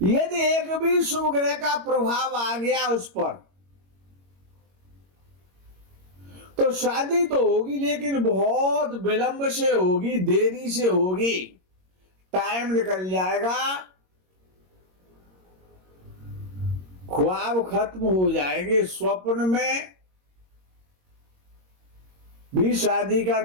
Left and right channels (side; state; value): left; late; 22 ms